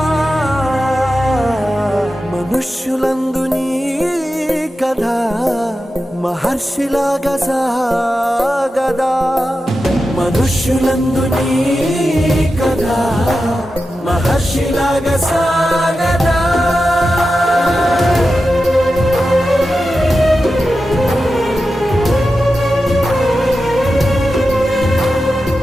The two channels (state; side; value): normal; both; correlation 0.91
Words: మనుష్యులందు నీ కథ మహర్షిలాగా సాగదా మనుష్యులందు నీ కథ మహర్షిలాగా సాగదా